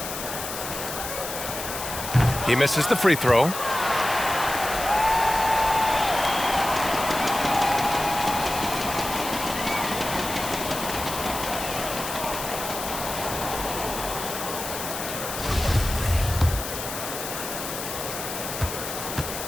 He misses the free throw.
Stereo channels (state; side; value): noise; left; hiss, 7 dB below the sound